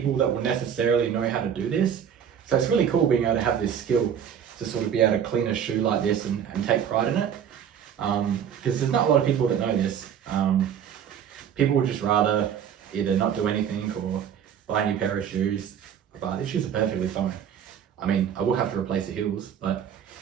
that will necessarily know how to do this. So it's really cool being able to have this skill to sort of be able to clean a shoe like this and take pride in it. Because there's not a lot of people that know this. People would just rather either not do anything or buy a new pair of shoes. But these shoes are perfectly fine. I mean, I will have to replace the heels, but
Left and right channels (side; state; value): left; quieter; 8.5 dB